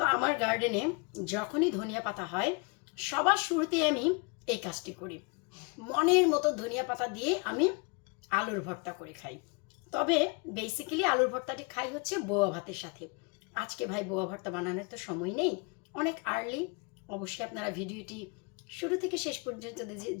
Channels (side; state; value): right; quieter; 31.9 dB